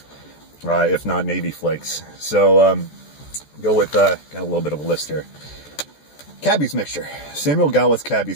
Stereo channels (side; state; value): right; late; 14 ms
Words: if not Navy Flakes. So, go with, got a little bit of a list here. Cabby's mixture, Samuel Gawith's